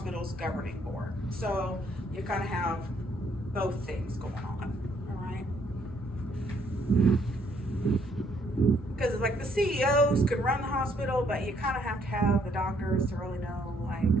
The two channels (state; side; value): normal; both; correlation 0.68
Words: governing board. So you kind of have both things going on, all right? Because like the CEOs could run the hospital, but you kind of have to have the doctors to really know like